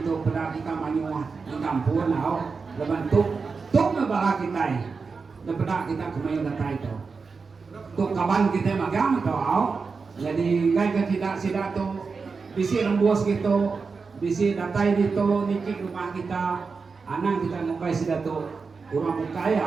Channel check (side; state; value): left; quieter; 4.8 dB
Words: pada kita manyuah di kampung lebantuk na bala kita na pada kita kumayo datay to kapan kita magang to jadi ngay ka sida to bisi rembos gitu bisi datay dito nikik rumah kita anang kita mukay sila to kurang